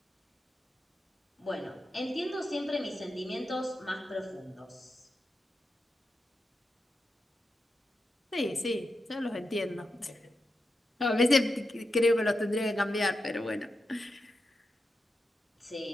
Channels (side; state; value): both; normal; correlation 0.88